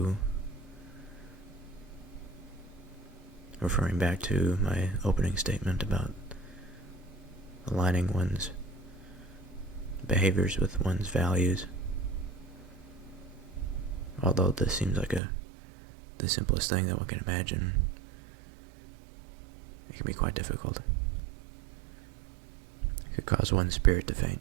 referring back to my opening statement about aligning one's behaviors with one's values. Although this seems like the simplest thing that one can imagine, it can be quite difficult. It could cause one's spirit to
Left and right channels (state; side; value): drops out; left; at 15.2 s